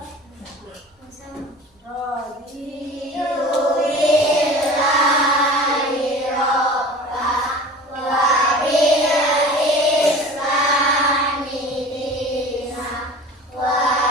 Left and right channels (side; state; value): both; normal; correlation 0.39